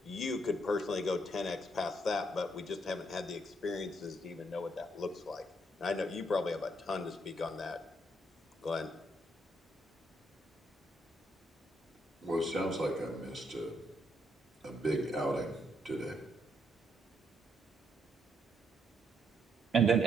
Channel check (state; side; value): normal; both; correlation 0.74